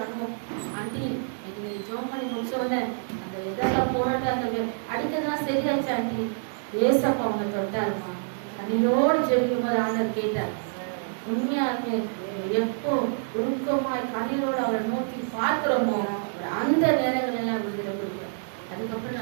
அனுபவம், ஆண்டி நீங்க ஜோம் பண்ணி முடிச்சோடனே அந்த இதெல்லாம் போராட்டம் அந்த அடிக்கிறதுலாம் சரியாச்சு ஆண்டி, ஏசப்பா அவங்க தொட்டாருமா. கண்ணீரோடு ஜெபிக்கும் போது ஆண்டவர் கேட்டார். உண்மையாலுமே எப்போ உருக்கமாய் கண்ணீரோடு அவரை நோக்கி பார்க்கிறோமோ அந்த நேரங்கள் எல்லாம் விடுதலை கொடுக்குறேன். அதுக்கப்புறம்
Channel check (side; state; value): left; silent; digital silence